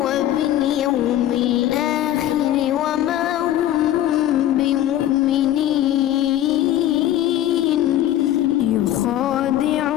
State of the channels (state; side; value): quieter; right; 12.6 dB